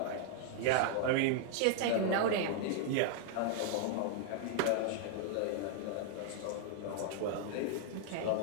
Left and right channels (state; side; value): different; both; correlation -0.01